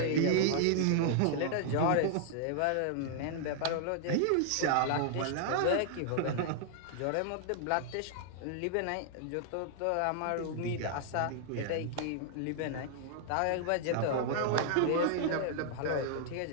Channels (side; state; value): both; different; correlation -0.01